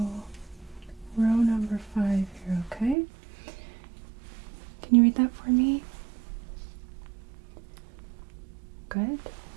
row number 5 here, okay? Can you read that for me? Good.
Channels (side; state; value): left; drops out; at 3.0 s